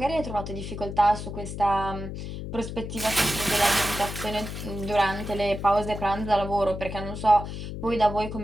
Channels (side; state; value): left; noise; hum, 7 dB below the sound